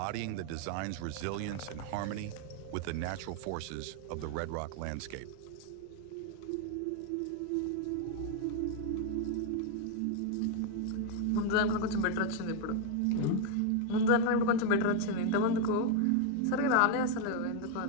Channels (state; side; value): different; both; correlation 0.00